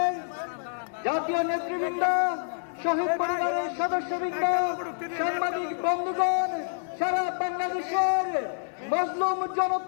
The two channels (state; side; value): silent; right; 60 dB below the other